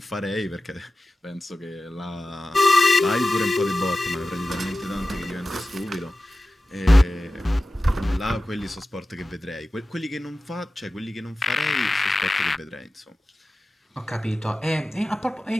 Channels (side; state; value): both; normal; correlation 0.95